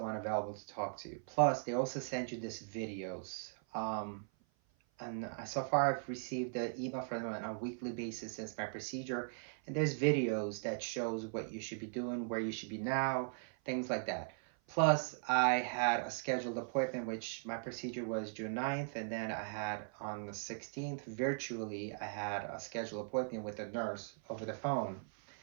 available to talk to. Plus, they also send you this videos. And so far I've received the email from them on a weekly basis since my procedure, and there's videos that shows what you should be doing, where you should be now, things like that. Plus, I had a scheduled appointment, which my procedure was June 9th, and then I had on the 16th, virtually, I had a scheduled appointment with a nurse over the phone.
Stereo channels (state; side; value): silent; left; 52 dB below the other